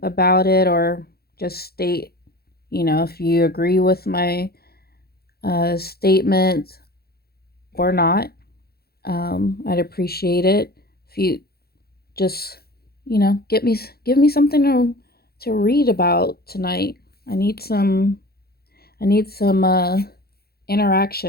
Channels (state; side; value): late; right; 0.45 ms